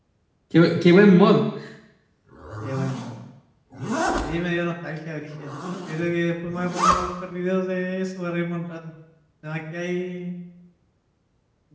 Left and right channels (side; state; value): both; identical; correlation 1.00